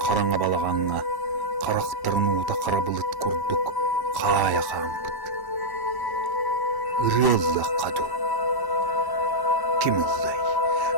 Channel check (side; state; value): right; late; 1.1 ms